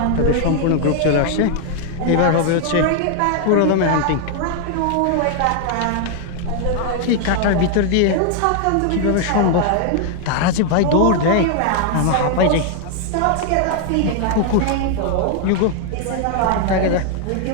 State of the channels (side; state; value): both; different; correlation 0.00